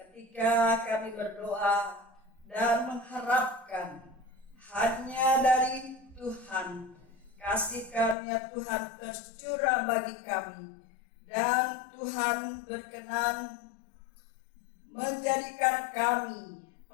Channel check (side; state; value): right; drops out; at 8.2 s